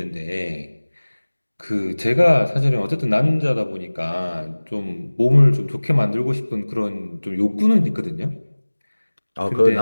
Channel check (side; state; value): both; inverted; correlation -1.00